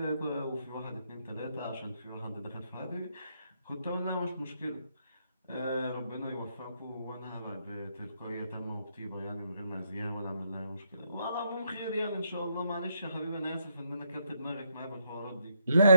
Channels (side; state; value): both; inverted; correlation -0.75